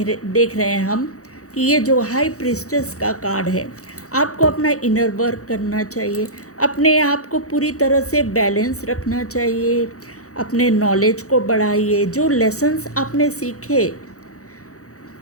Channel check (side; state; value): right; late; 0.65 ms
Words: रहे हैं हम कि ये जो हाई प्रीस्टेस का कार्ड है, आपको अपना इनर वर्क करना चाहिए, अपने आप को पूरी तरह से बैलेंस रखना चाहिए, अपने नॉलेज को बढ़ाइए। जो लेसन्स आपने सीखे